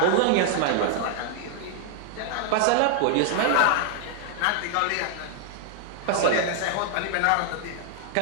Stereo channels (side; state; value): both; different; correlation 0.00